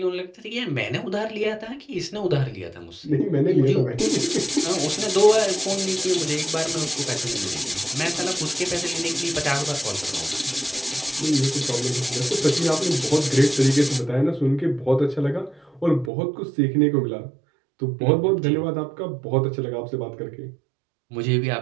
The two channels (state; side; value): drops out; left; at 16.1 s